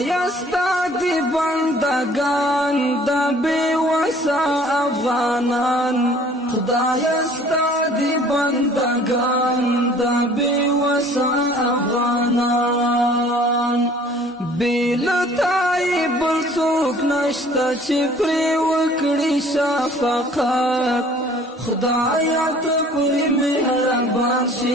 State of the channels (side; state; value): both; normal; correlation 0.53